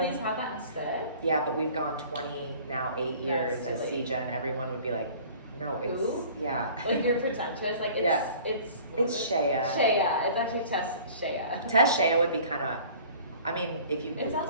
I please have that instead? Yeah, but we've gone 8 years That's as silly. Sija, and everyone would be like, no, it's, Who? yeah. Like you're pretentious. Like it's, Yeah. it's Shea. Shea. It's actually Tess Shea. Tess Shea would be kind of, if you It sounds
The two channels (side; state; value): both; inverted; correlation -0.48